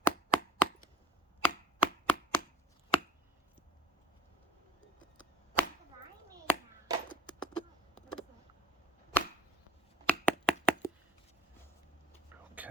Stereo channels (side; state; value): both; normal; correlation 0.48